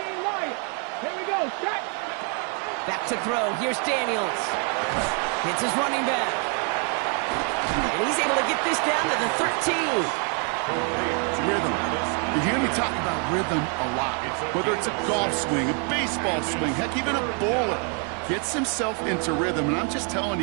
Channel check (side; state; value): left; quieter; 38.5 dB